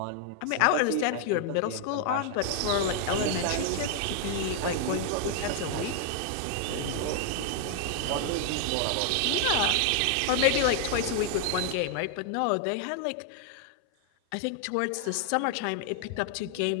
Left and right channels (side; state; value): both; different; correlation 0.00